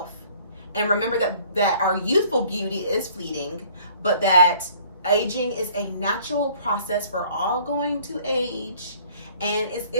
and remember that our youthful beauty is fleeting, but that aging is a natural process. We're all going to age, and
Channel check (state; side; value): inverted; both; correlation -0.55